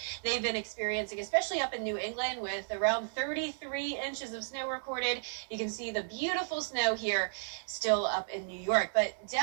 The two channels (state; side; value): silent; left; 55 dB below the other